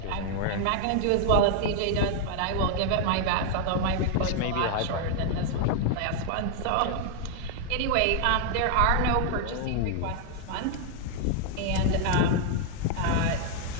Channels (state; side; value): different; both; correlation 0.00